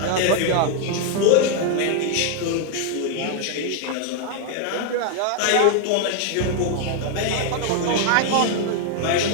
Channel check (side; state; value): both; different; correlation 0.00